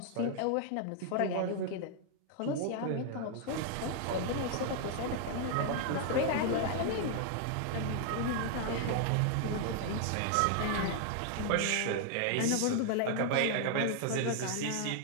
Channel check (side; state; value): both; different; correlation 0.00